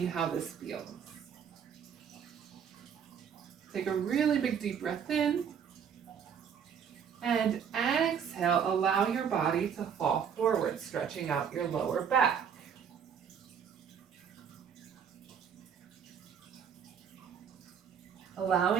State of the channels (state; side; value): quieter; left; 7.6 dB